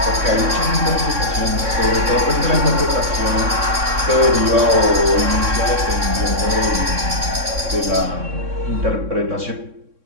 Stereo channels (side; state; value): left; late; 3.6 ms